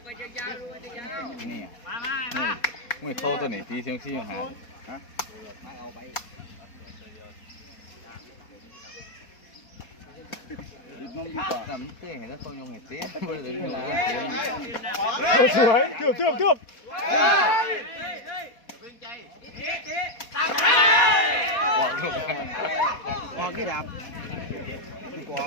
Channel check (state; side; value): late; right; 4.2 ms